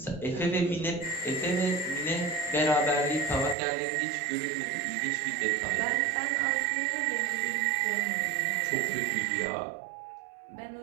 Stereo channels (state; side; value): drops out; left; at 3.6 s